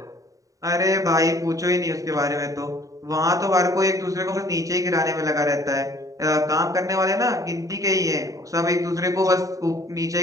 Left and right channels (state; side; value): late; left; 0.16 ms